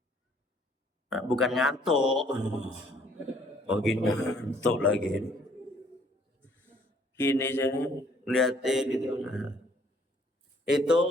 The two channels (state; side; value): normal; both; correlation 0.61